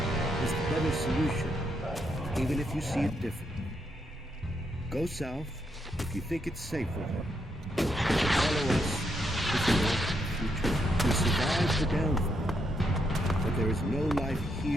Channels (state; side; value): normal; both; correlation 0.79